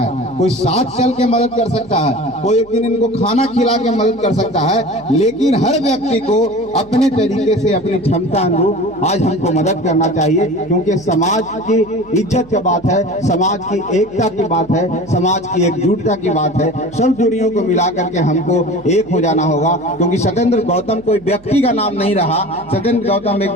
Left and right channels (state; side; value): noise; right; hum, 24 dB below the sound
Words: कोई साथ चल के मदद कर सकता है, कोई एक दिन इनको खाना खिला के मदद कर सकता है। लेकिन हर व्यक्ति को अपने तरीके से, अपनी क्षमता अनुरूप आज हमको मदद करना चाहिए, क्योंकि समाज की इज्जत की बात है, समाज की एकता की बात है, समाज की एकजुटता की बात है। सब दूरियों को मिला करके हमको एक हो जाना होगा, क्योंकि सत्येंद्र गौतम कोई व्यक्ति का नाम नहीं रहा, सत्येंद्र गौतम एक